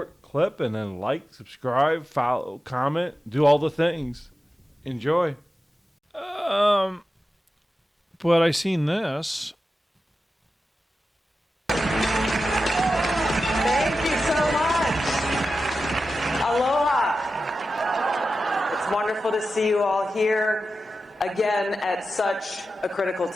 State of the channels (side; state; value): both; normal; correlation 0.92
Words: clip and then like, subscribe, follow, comment, do all the things. Enjoy. But I seen this. Thank you so much. Aloha. It's wonderful to see you all here again at such a critical